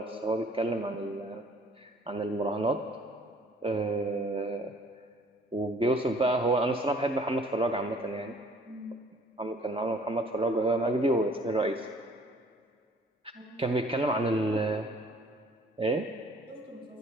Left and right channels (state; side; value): normal; both; correlation 0.56